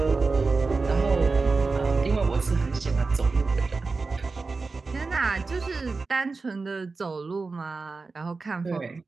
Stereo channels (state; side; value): quieter; left; 4.0 dB